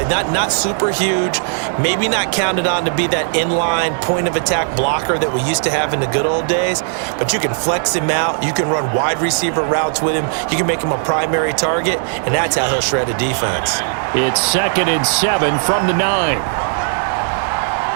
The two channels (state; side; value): silent; left; 66 dB below the other